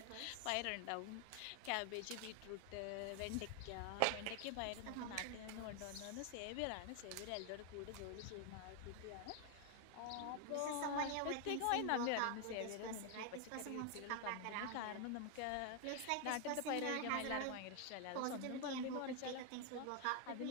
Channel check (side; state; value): both; different; correlation 0.00